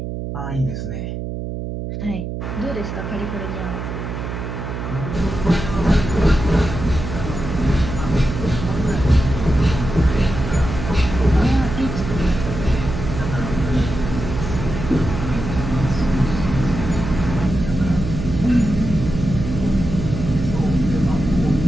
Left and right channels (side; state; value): right; noise; hum, 6 dB below the sound